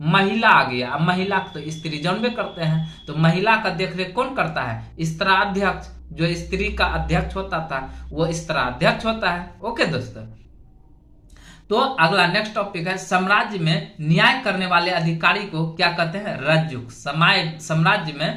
महिला आ गया, अब महिला तो स्त्री जानबे करते हैं, तो महिला का देखरेख कौन करता है, स्त्राध्यक्ष। जो स्त्री का अध्यक्ष होता था वो स्त्राध्यक्ष होता है। ओके दोस्तों, तो अगला नेक्स्ट टॉपिक है साम्राज्य में न्याय करने वाले अधिकारी को क्या कहते हैं, रज्जुक। साम्राज्य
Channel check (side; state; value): both; identical; correlation 1.00